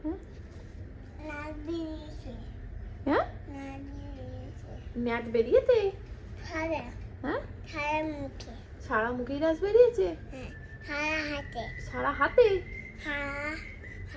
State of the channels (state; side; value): identical; both; correlation 1.00